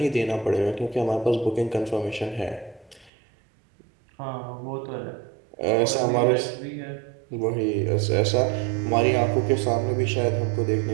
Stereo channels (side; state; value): left; drops out; at 3.1 s